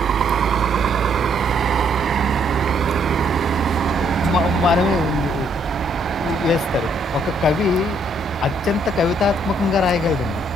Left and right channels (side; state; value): both; normal; correlation 0.69